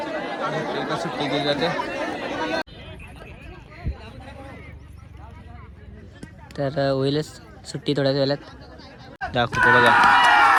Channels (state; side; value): identical; both; correlation 1.00